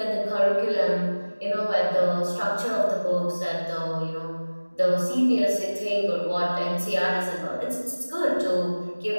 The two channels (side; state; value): both; inverted; correlation -1.00